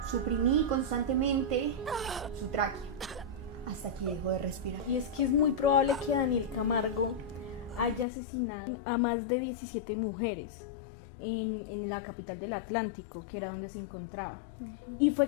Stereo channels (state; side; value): drops out; right; at 8.1 s